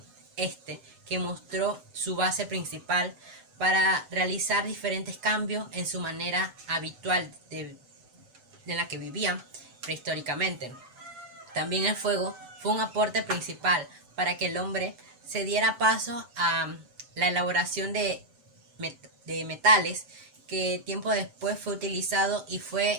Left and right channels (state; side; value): late; left; 7.9 ms